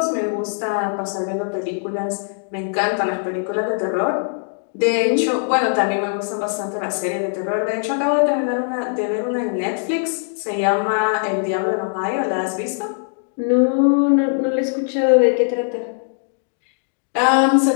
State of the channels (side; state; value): right; silent; digital silence